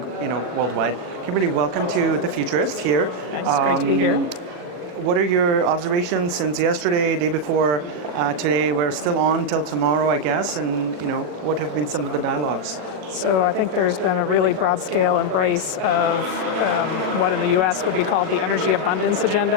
worldwide. Kimberly, welcome to the Futurist here. Thanks, great to be here. What are your observations since yesterday, day before, today? We're still on till tomorrow, I guess, and what have been some of the dialogues? So I think there's been a really broad-scale embrace of what in the US would be called the energy abundance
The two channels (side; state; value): left; late; 39 ms